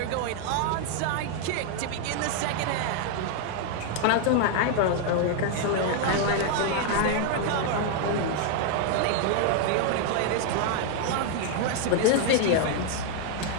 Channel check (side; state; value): both; different; correlation 0.00